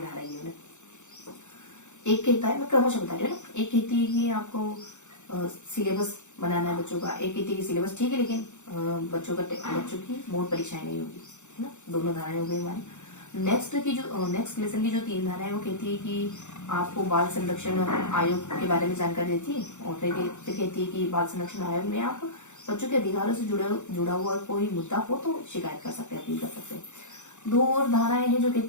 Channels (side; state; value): right; late; 0.84 ms